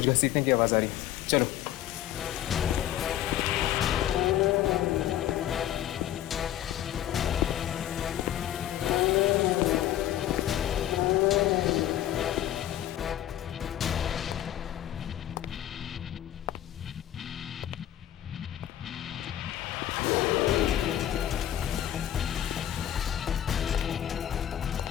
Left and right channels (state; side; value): quieter; right; 12.2 dB